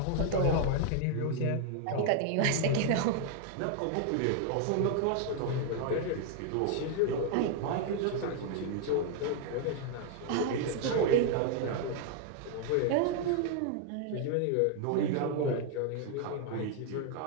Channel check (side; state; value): both; different; correlation 0.00